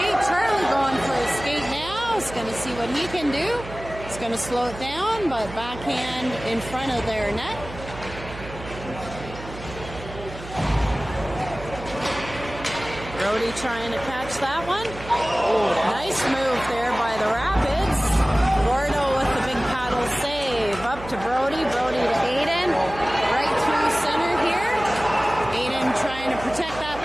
Charlie going for a skate now. He's going to see what he can do. He's going to slow it down, but backhand in front of their net. Brody trying to catch that one. Nice move there by the Rapids. Gordo with the big paddle save. Up to Brody. Brody to Aiden. Right through center here. Aiden trying to protect that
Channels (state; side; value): noise; right; hum, 13 dB below the sound